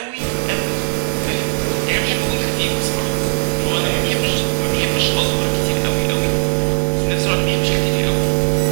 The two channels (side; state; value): left; silent; 55 dB below the other